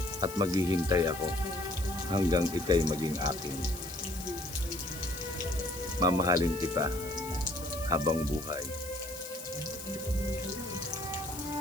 at maghihintay ako hanggang ika'y maging akin. Mamahalin kita habang buhay.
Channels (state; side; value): noise; left; hiss, 13 dB below the sound